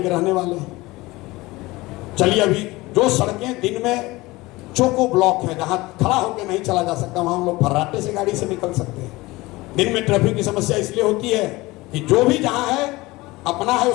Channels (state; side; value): quieter; right; 20.8 dB